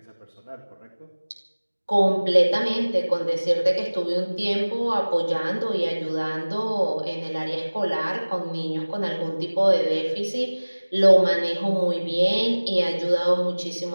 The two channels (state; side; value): inverted; both; correlation -1.00